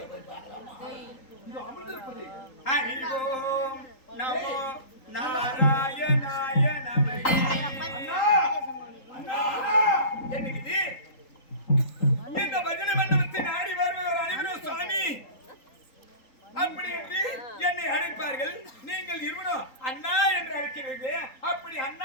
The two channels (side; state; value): right; late; 3.8 ms